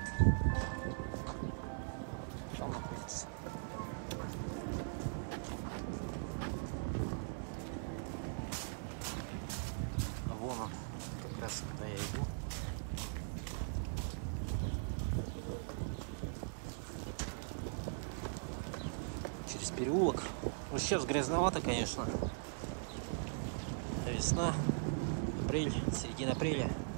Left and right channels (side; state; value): left; silent; 51 dB below the other